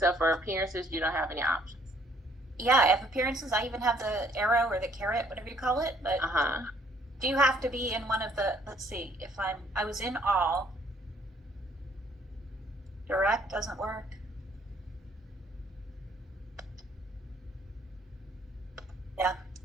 for appearances. You don't have any options. Yeah, I have appearances. I even have the arrow or the carrot, whatever you call it. But do you have to be in one of the, let's see, if I was in all. Direct doesn't work. Yeah.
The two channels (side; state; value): both; normal; correlation 0.63